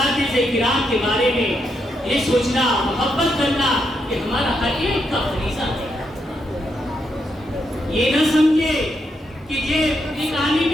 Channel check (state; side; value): normal; both; correlation 0.80